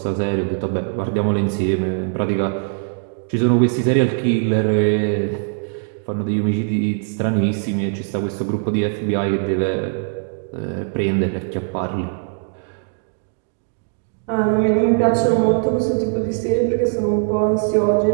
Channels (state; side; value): silent; left; digital silence